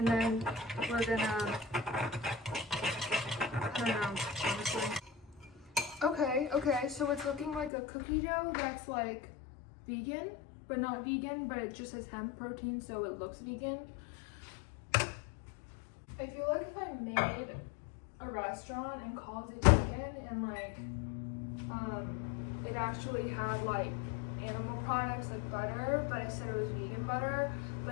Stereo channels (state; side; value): drops out; right; at 7.7 s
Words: then we're gonna, I don't know, honestly. Okay, so it's looking like a cookie dough that's like vegan, but not vegan, but it just has hemp protein, so it looks vegan. I feel like if I made a restaurant and called it vegan and like, it actually had like animal products like butter, but I said it was vegan butter,